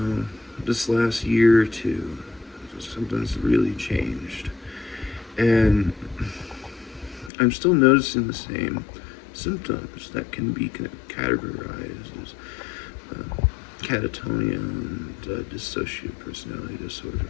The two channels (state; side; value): drops out; right; at 7.3 s